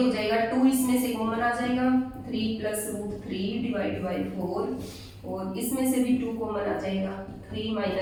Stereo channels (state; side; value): identical; both; correlation 1.00